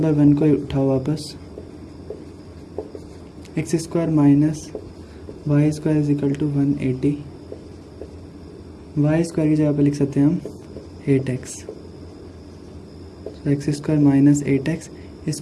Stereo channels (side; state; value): both; identical; correlation 1.00